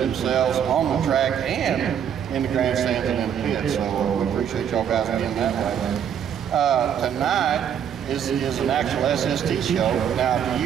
on the track and in the grandstands and in the pit. So we appreciate y'all guys being that way. Tonight is an actual SST show. Now, do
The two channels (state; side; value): quieter; left; 8.7 dB